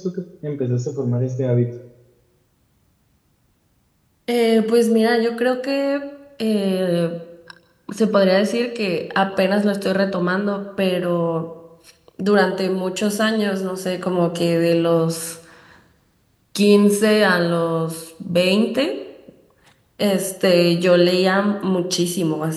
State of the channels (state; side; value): identical; both; correlation 1.00